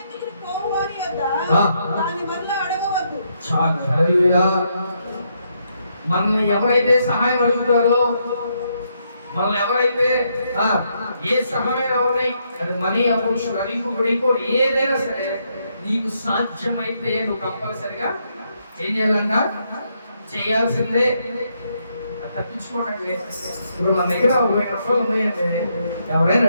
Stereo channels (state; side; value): inverted; both; correlation -0.76